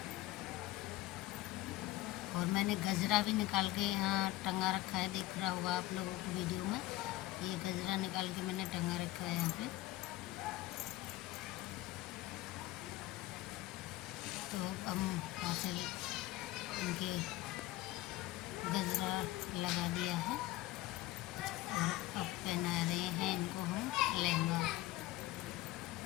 और मैंने गजरा भी निकाल के यहाँ टंगा रखा है, दिख रहा होगा आप लोगों को वीडियो में। ये गजरा निकाल के मैंने टंगा रखा है यहाँ पे। तो अब हम वहाँ से इनके गजरा लगा दिया है और अब पहना रहे हैं इनको हम लहंगा।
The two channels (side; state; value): right; quieter; 16.8 dB